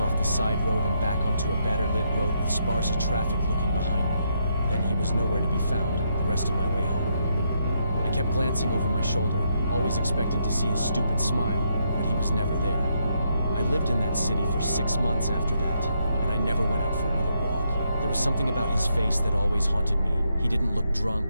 off the side road and back onto a better lit road with sparse traffic looking behind me. Then he was nowhere to be found the rest of my way home. I kept glancing over my shoulder, always expecting to see his stupid smile, but he was never there. I lived in that city for 6 months after that, and I never went out for another walk. There was something about his face that always haunted me. He didn't look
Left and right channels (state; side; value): inverted; both; correlation -0.77